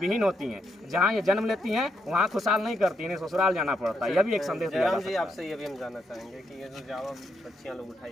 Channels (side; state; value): both; normal; correlation 0.79